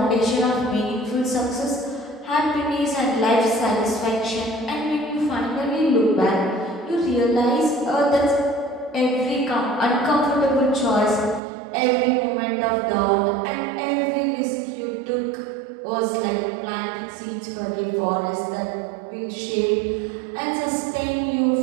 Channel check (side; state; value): left; drops out; at 11.4 s